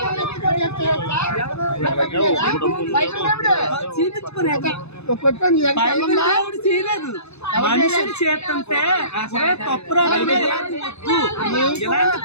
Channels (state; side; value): late; right; 0.80 ms